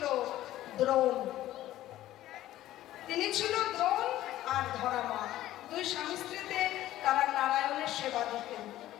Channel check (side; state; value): right; quieter; 14.3 dB